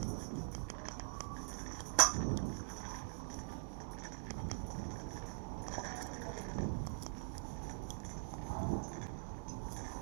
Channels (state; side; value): silent; left; digital silence